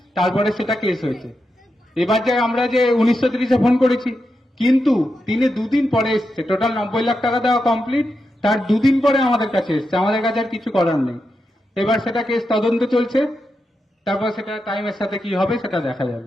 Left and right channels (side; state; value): both; normal; correlation 0.87